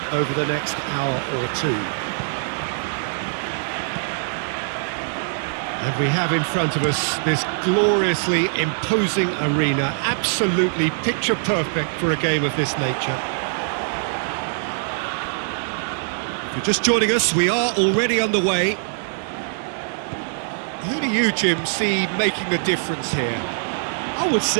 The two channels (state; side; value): silent; left; digital silence